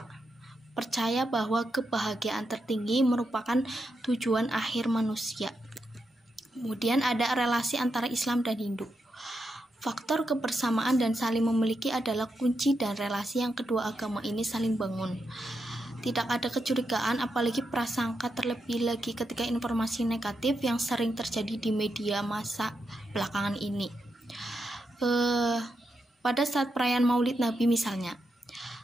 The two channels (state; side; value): normal; both; correlation 0.85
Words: percaya bahwa kebahagiaan tertinggi merupakan tujuan akhir manusia. Kemudian ada relasi antara Islam dan Hindu. Faktor kebersamaan dan saling memiliki adalah kunci dan relasi yang kedua agama ini saling bangun. Tidak ada kecurigaan, apalagi prasangka, terlebih lagi ketika informasi negatif yang sering terjadi di media massa belakangan ini. Pada saat perayaan Maulid Nabi misalnya,